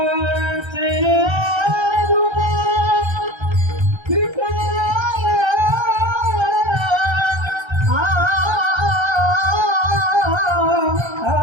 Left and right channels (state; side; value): late; left; 1.3 ms